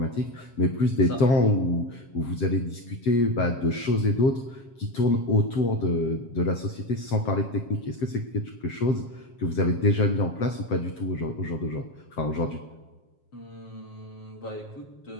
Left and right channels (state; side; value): late; right; 7.5 ms